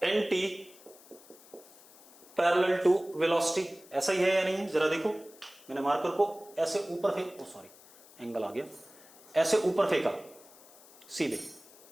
anti parallel to velocity, ऐसा ही है या नहीं है? जरा देखो, मैंने मार्कर को ऐसे ऊपर फेंक, सॉरी एंगल आ गया, ऐसे ऊपर फेंका सीधे,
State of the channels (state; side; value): noise; left; hiss, 23 dB below the sound